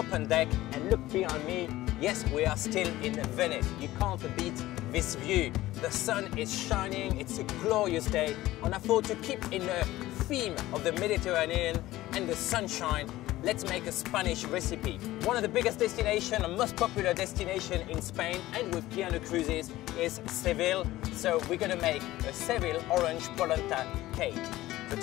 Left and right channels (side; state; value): right; quieter; 16.4 dB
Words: deck, and look behind me. Yes, we are still in Venice. You can't beat this view. The sun is shining, it's a glorious day, and I thought to keep in the theme of the Mediterranean and the sunshine, let's make a Spanish recipe. One of the biggest destinations and most popular destination in Spain and with piano cruises is Seville. So we're gonna make a Seville Orange Polenta Cake. So